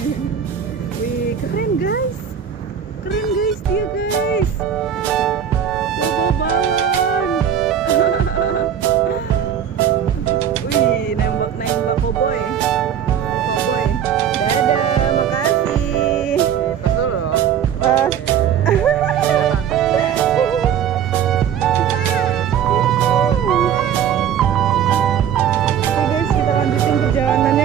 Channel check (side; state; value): left; quieter; 8.9 dB